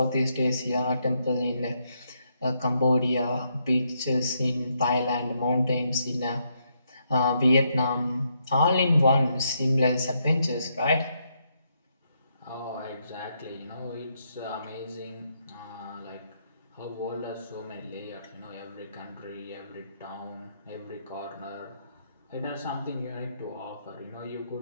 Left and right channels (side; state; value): both; inverted; correlation -0.77